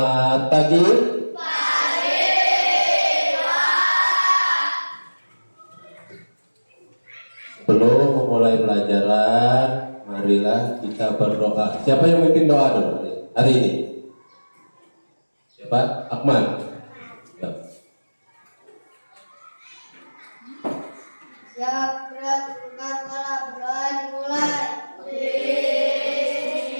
pagi. Sebelum memulai pelajaran, marilah kita berdoa. Siapa yang memimpin doa dulu hari ini? Siapa? Akmal. Ya. Siap, berat, bukan malam, berdoa dimulai.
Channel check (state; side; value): inverted; both; correlation -1.00